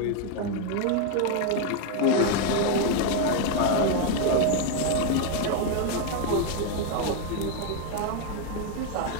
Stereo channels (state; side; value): different; both; correlation 0.01